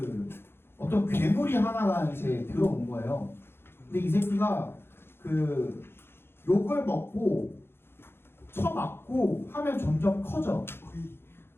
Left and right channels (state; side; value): late; right; 0.11 ms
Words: 어떤 괴물이 하나가 이제 들어온 거예요. 근데 이 새끼가 그 욕을 먹고 쳐맞고 하면 점점 커져.